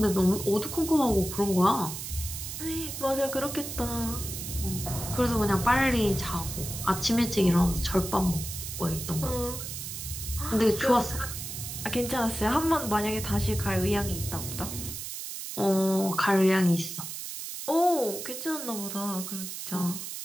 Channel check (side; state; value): right; noise; hiss, 7 dB below the sound